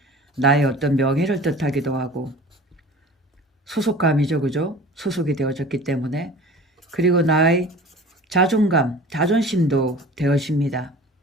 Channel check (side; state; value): both; normal; correlation 0.42